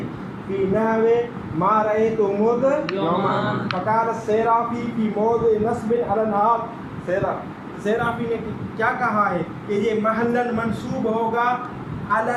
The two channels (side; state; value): both; identical; correlation 1.00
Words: فی نحو ما رأیت مذ یومان فقال السیرافی فی موضع نصب علی الحال. سیرافی نے کیا کہا ہے کہ یہ محلاً منصوب ہوگا علی